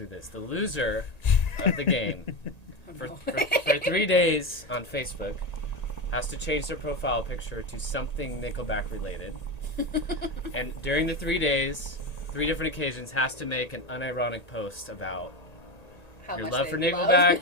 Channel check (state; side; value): late; right; 1.9 ms